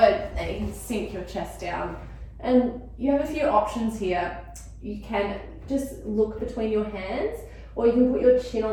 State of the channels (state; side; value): identical; both; correlation 1.00